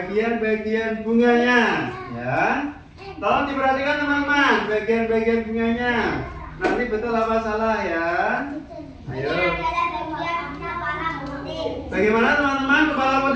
bunganya, ya. Tolong diperhatikan teman-teman, bagian-bagian bunganya. Nanti betul apa salah ya? Ayo. Ini adalah bagian kepala putih. Bagaimana teman-teman kepala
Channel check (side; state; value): both; identical; correlation 1.00